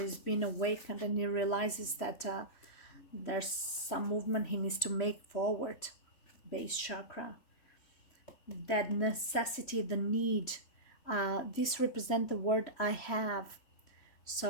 being awakened, and he realizes that there's some movement he needs to make forward. Base chakra, that necessity, the need. This represent the word I have.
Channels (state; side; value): late; right; 3.1 ms